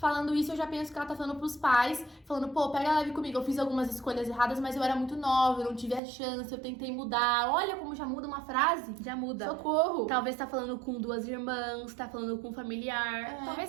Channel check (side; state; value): left; drops out; at 6.0 s